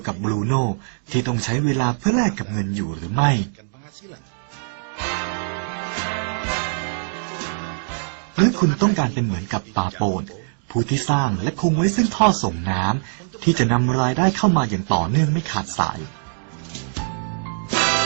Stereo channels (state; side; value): silent; left; digital silence